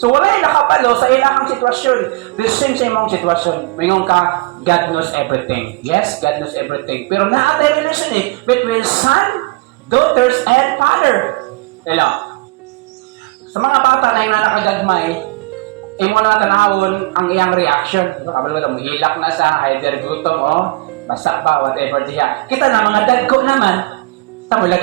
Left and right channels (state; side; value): quieter; left; 24.0 dB